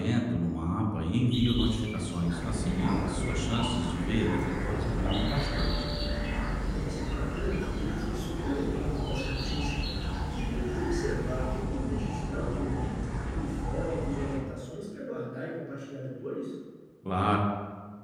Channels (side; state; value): both; identical; correlation 1.00